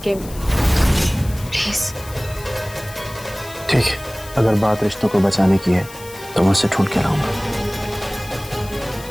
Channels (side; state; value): left; noise; hiss, 17 dB below the sound